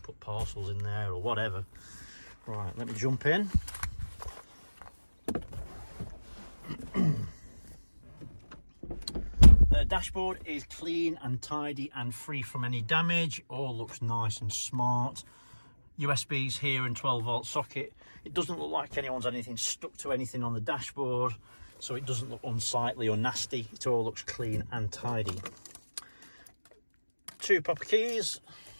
put parcels in there or whatever. Right, let me jump in. The dashboard is clean and tidy and free from any damage, all looks nice and smart. USBs here and 12-volt socket. It doesn't look like anyone's had anything stuck to anything on the dashboard, so it doesn't look unsightly or nasty, it all looks clean and tidy. 2 proper keys.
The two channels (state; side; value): inverted; both; correlation -1.00